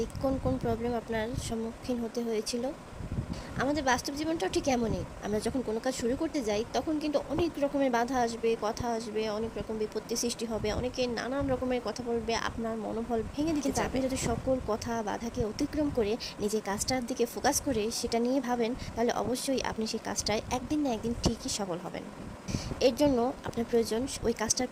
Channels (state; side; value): identical; both; correlation 1.00